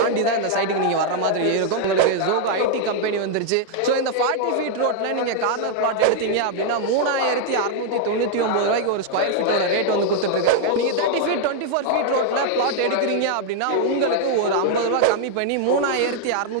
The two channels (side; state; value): both; different; correlation 0.00